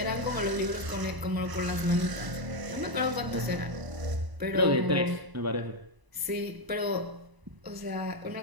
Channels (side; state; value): left; late; 1.0 ms